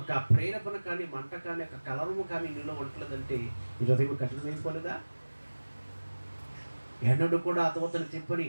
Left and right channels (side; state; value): both; inverted; correlation -1.00